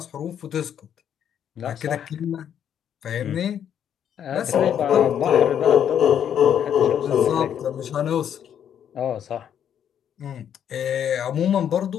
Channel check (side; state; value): right; quieter; 9.2 dB